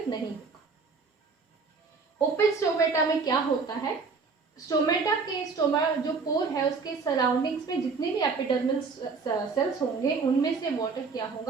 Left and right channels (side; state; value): left; quieter; 4.7 dB